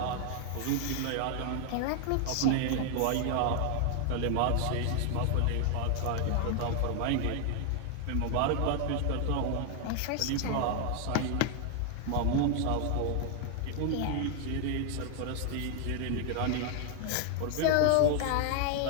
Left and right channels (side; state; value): both; different; correlation 0.00